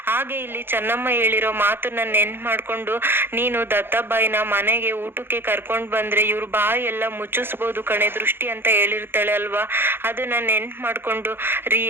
ಹಾಗೆ ಇಲ್ಲಿ ಚೆನ್ನಮ್ಮ ಹೇಳಿರೋ ಮಾತನ್ನ ನೆನ್ಪು ಮಾಡ್ಕೊಂಡು, ನೀನು ದತ್ತಬಾಯಿನ ಮನೆಗೆ ಊಟಕ್ಕೆ ಕರ್ಕೊಂಡ್ ಬಂದ್ರೆ ಇವ್ರ ಬಾಯಿ ಎಲ್ಲ ಮುಚ್ಚಿಸ್ಬೋದು ಕಣೆ ದೃಷ್ಟಿ ಅಂತ ಹೇಳಿರ್ತಾಳೆ ಅಲ್ವಾ. ಅದನ್ನ ನೆನ್ಪು ಮಾಡ್ಕೊಂಡು, ರೀ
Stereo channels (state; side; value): late; left; 0.10 ms